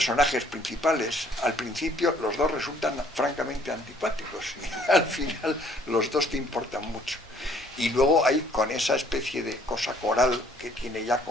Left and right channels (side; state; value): both; normal; correlation 0.61